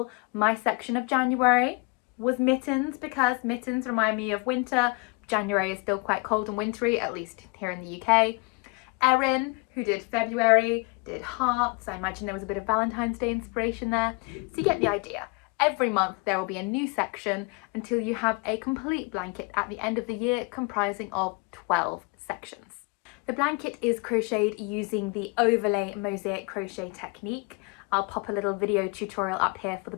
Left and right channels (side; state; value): right; quieter; 29.8 dB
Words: my section of January was mittens, because mittens remind me of winter. January is still quite cold and wintry, at least here in the UK. Erin, who did February, did hearts. I imagine there was a bit of Valentine's Day inspiration there. So you get the idea. Every month there will be a new section until you have a complete blanket at the end of the year comprising of 12 sections. The blanket is crocheted using the overlay mosaic crochet technique. I'll pop a little video tutorial up here for the